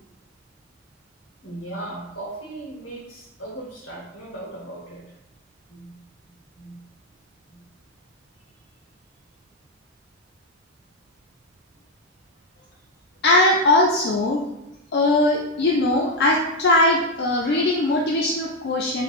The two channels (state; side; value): normal; both; correlation 0.05